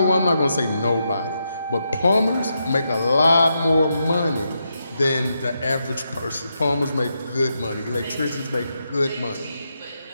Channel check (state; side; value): inverted; both; correlation -0.83